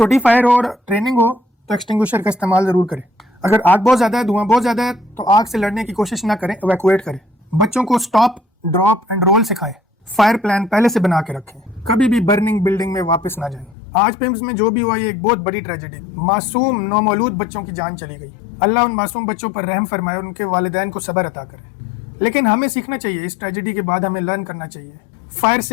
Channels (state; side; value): drops out; right; at 13.8 s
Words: फायर हो और ट्रेनिंग हो तो एक्सटिंग्विशर का इस्तेमाल जरूर करें। अगर आग बहुत ज्यादा है, धुआं बहुत ज्यादा है, तो आग से लड़ने की कोशिश ना करें, इवैक्यूएट करें। बच्चों को स्टॉप, ड्रॉप एंड रोल सिखाएं। फायर प्लान पहले से बना के रखें, कभी भी बर्निंग बिल्डिंग में वापस ना जाएं। आज पिम्स में जो भी हुआ ये एक बहुत बड़ी ट्रेजेडी, मासूम नौमौलूद बच्चों की जान चली गई। अल्लाह उन मासूम बच्चों पर रहम फरमाए और उनके वालिदैन को सब्र अता करे। लेकिन हमें सीखना चाहिए, इस ट्रेजेडी के बाद हमें लर्न करना चाहिए। फायर